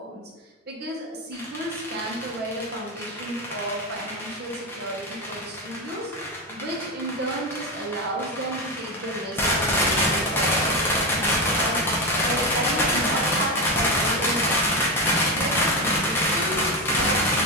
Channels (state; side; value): normal; both; correlation 0.14